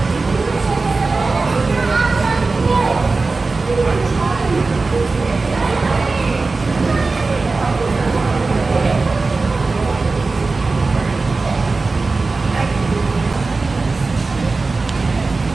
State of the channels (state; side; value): quieter; left; 3.8 dB